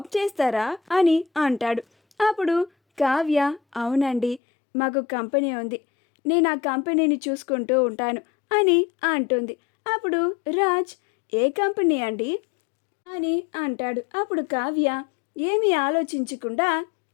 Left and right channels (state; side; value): drops out; right; at 4.4 s